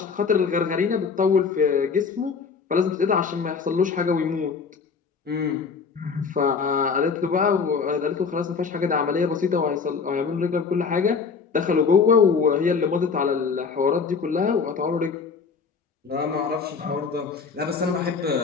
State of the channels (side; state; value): right; quieter; 5.5 dB